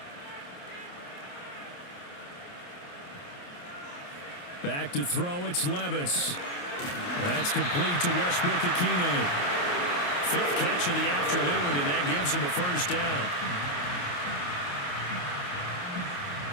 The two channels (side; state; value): right; late; 28 ms